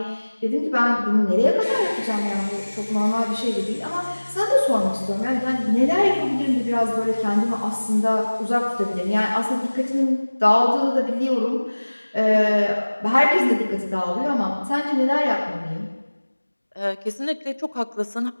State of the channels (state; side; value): inverted; both; correlation -1.00